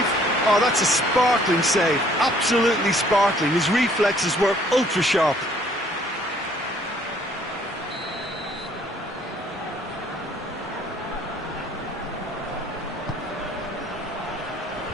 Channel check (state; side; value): normal; both; correlation 0.60